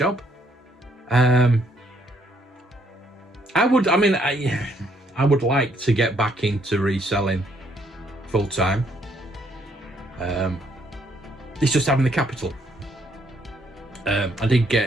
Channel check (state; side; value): normal; both; correlation 0.70